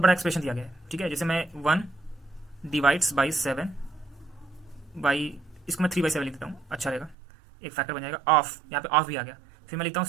बड़ा एक्सप्रेशन दिया गया है, ठीक है, जैसे मैं 1 डिवाइड्स बाई 7 बाई, इसको मैं 3/7 लिख देता हूँ, अच्छा रहेगा, एक फैक्टर बन जाएगा। ऑफ, यहाँ पे ऑफ भी आ गया, फिर मैं लिखता हूँ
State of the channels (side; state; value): left; drops out; at 7.2 s